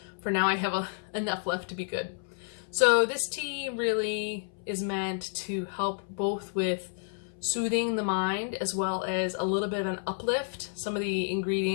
for now I have enough left to be good. So this tea really is meant to help both with soothing the mind as well as a little bit of an uplift. Some of the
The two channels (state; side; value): silent; right; 58 dB below the other